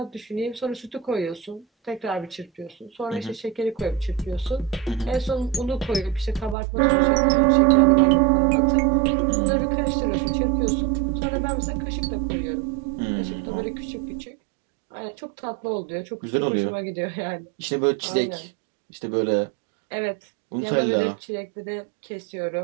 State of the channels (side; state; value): left; drops out; at 6.6 s